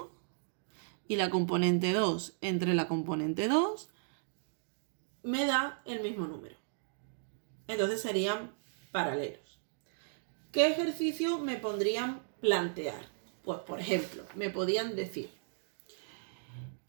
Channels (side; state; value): left; silent; digital silence